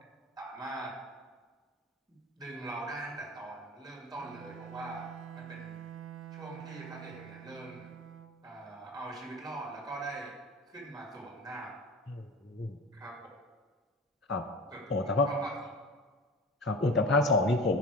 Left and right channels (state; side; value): normal; both; correlation 0.36